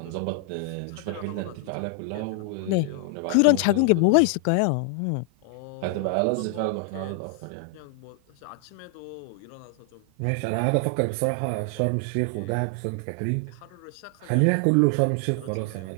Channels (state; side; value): different; both; correlation 0.00